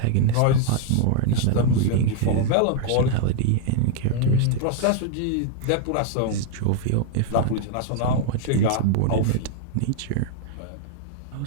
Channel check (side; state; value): both; different; correlation 0.00